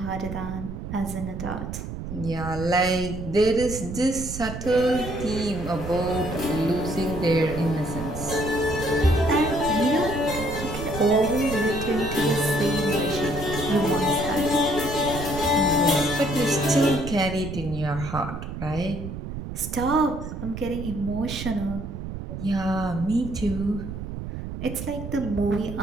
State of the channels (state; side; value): noise; right; rumble, 8 dB below the sound